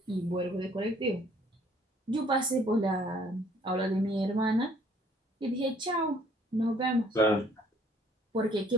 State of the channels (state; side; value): normal; both; correlation 0.61